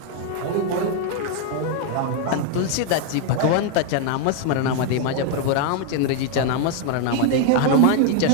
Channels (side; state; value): both; different; correlation 0.00